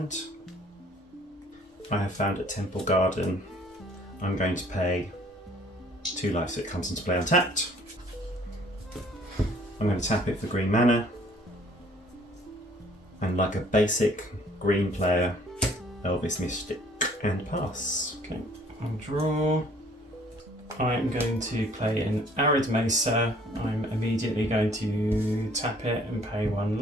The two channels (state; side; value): normal; both; correlation 0.57